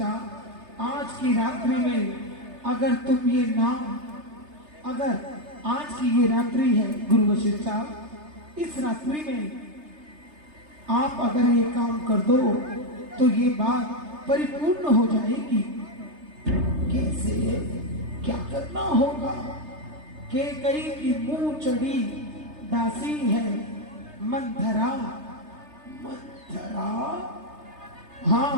आज की रात्रि में अगर तुम ये नाम, अगर आज की ये रात्रि है गुरु वशिष्ठा, इस रात्रि में आप अगर ये काम कर दो तो ये बात परिपूर्ण हो जाएगी। कैसे, क्या करना होगा? कैकेयी की मुंह चढ़ी दासी है मंथरा। मंथरा,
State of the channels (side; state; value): left; late; 3.3 ms